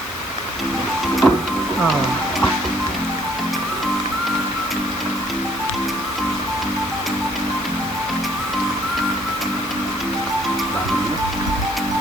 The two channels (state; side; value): noise; right; hiss, 15 dB below the sound